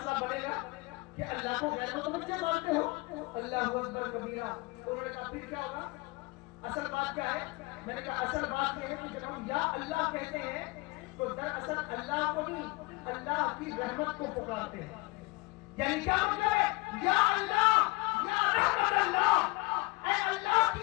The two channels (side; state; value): right; quieter; 23.7 dB